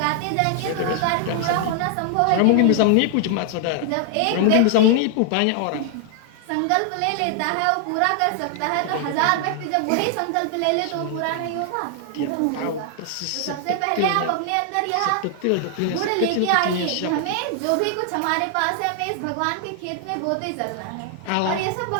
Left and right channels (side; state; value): both; different; correlation 0.00